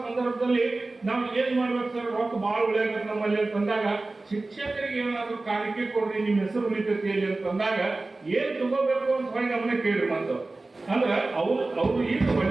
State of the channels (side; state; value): left; quieter; 3.2 dB